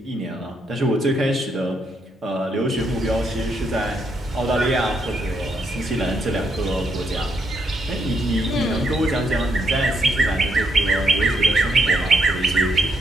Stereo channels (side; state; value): both; normal; correlation 0.76